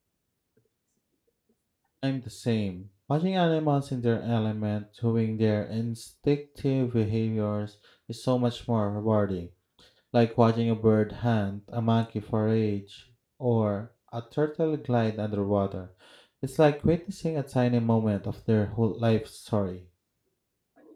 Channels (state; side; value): identical; both; correlation 1.00